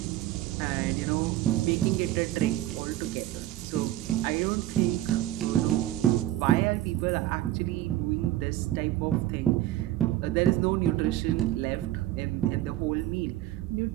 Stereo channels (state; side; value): quieter; left; 14.4 dB